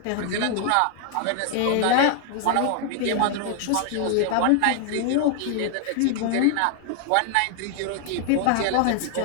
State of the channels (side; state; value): both; different; correlation 0.00